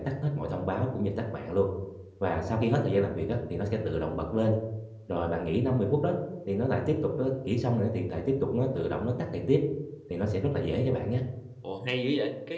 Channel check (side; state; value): both; identical; correlation 1.00